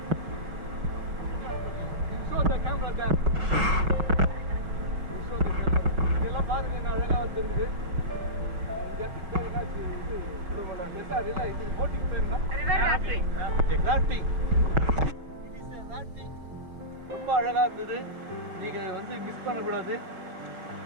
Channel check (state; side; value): late; left; 5.6 ms